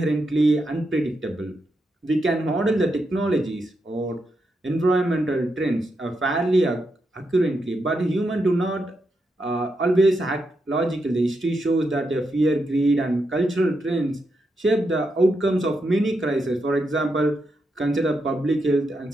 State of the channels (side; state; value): both; normal; correlation 0.84